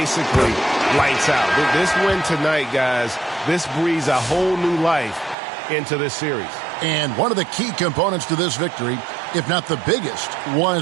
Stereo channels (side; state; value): left; drops out; at 5.4 s